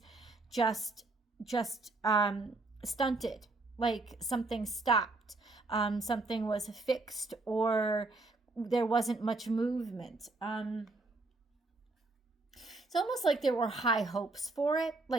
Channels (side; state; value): left; quieter; 3.2 dB